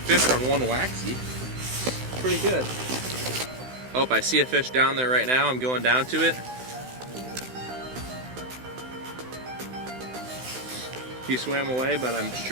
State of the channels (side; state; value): left; late; 16 ms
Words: on one waxy. Pretty good. Oh, I see a fish down there right now. I'm going down to it. He swam away, but I'm